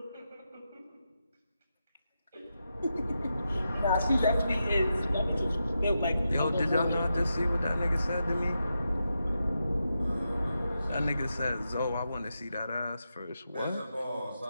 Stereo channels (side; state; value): both; inverted; correlation -0.87